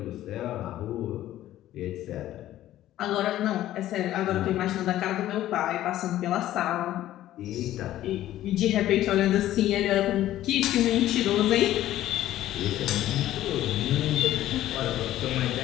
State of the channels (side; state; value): right; quieter; 13.7 dB